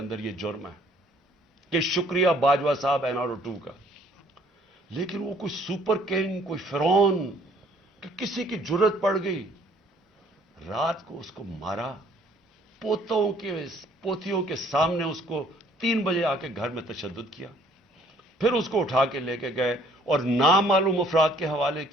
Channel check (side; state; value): both; normal; correlation 0.60